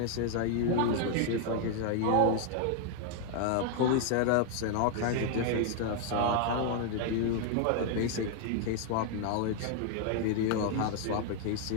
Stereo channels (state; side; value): different; both; correlation 0.00